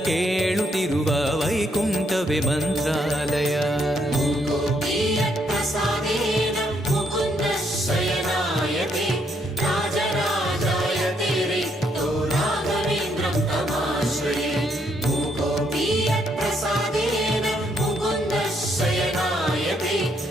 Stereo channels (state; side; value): normal; both; correlation 0.73